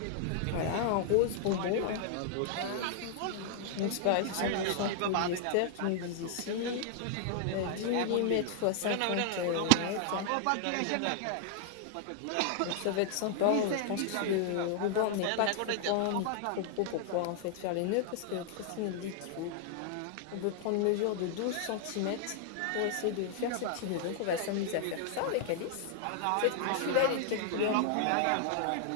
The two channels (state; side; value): different; both; correlation 0.00